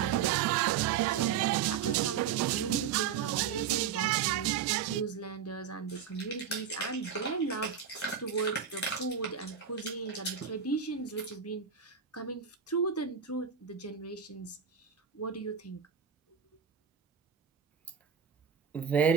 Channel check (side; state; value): left; quieter; 7.6 dB